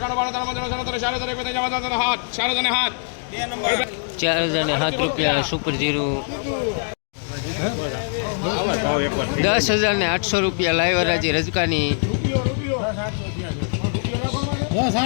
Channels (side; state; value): right; silent; 64 dB below the other